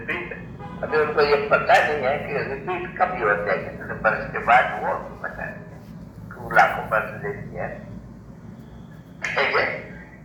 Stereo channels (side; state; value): both; identical; correlation 1.00